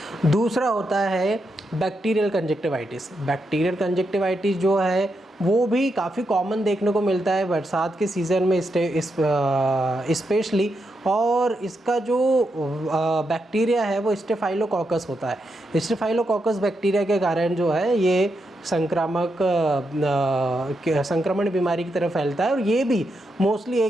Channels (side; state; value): both; normal; correlation 0.83